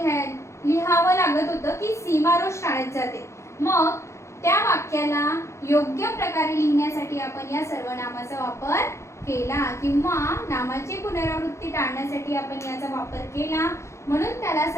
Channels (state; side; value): late; right; 0.14 ms